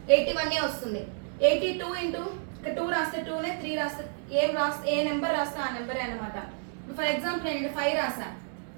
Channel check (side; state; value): left; silent; digital silence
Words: 81 వస్తుంది. 82 ఇక్కడ 2 రాస్తే 2నే, 3 రాస్తే ఏ నెంబర్ రాస్తే ఆ నెంబరే అనమాట. ఫర్ ఎగ్జాంపుల్ నేను ఇక్కడ 5 రాసా,